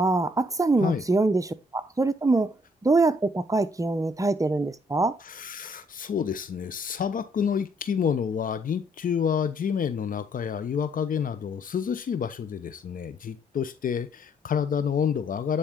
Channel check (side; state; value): both; normal; correlation 0.67